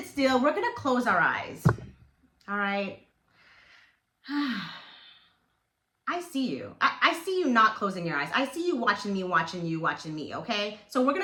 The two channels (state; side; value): identical; both; correlation 1.00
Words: still, we're gonna close our eyes, all right? I see you. I see you not closing your eyes. I see you watching me, okay? So we're